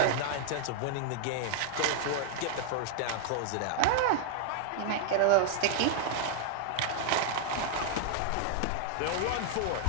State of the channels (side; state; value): both; different; correlation 0.00